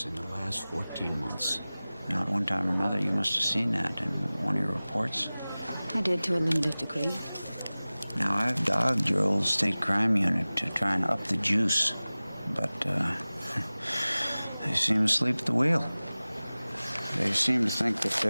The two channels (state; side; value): inverted; both; correlation -0.98